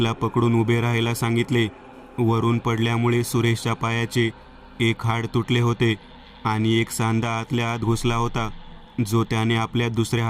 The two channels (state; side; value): identical; both; correlation 1.00